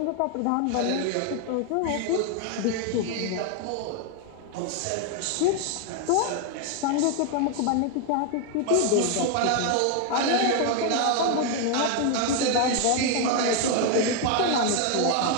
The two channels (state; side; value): different; both; correlation 0.01